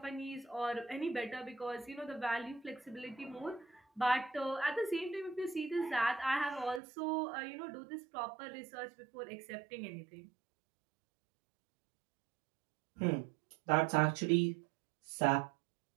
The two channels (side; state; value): left; drops out; at 6.8 s